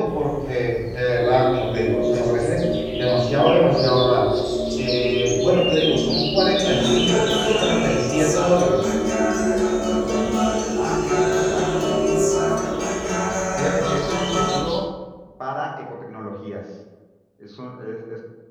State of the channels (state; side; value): identical; both; correlation 1.00